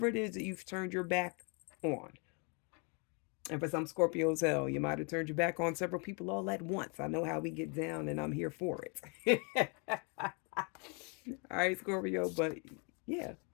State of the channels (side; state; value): right; quieter; 35.3 dB